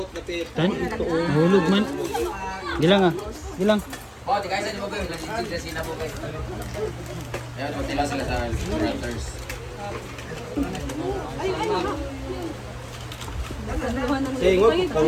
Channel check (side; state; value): both; identical; correlation 1.00